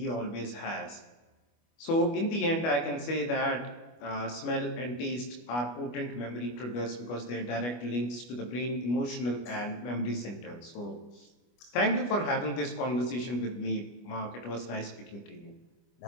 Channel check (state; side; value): late; right; 25 ms